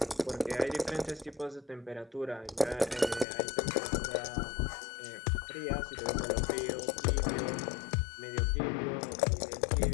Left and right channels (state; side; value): drops out; right; at 3.2 s